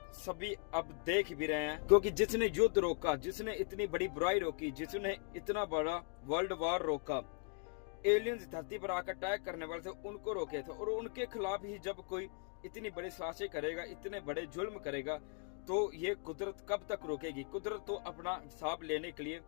सभी अब देख भी रहे हैं, क्योंकि जिसने युद्ध रोका, जिसने इतनी बड़ी बुराई रोकी, जिसने इतना बड़ा वर्ल्ड वॉर रोका, एलियंस धरती पर आकर अटैक करने वाले थे, उनको रोके थे। और उनके खिलाफ ही जब कोई इतनी बड़ी साजिशें करेगा, इतने बड़े जुल्म करेगा, तो ये कुदरत कब तक रोकेगी। कुदरत तो अपना हिसाब लेने के लिए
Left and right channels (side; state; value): right; quieter; 40.0 dB